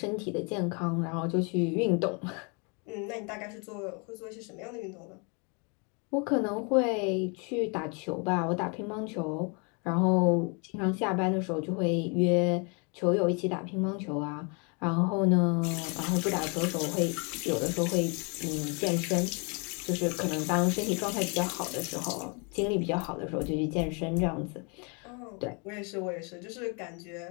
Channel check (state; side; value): quieter; right; 34.1 dB